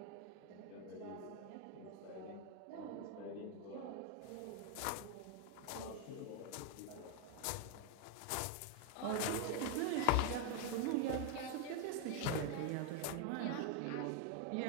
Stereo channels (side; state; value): both; different; correlation 0.01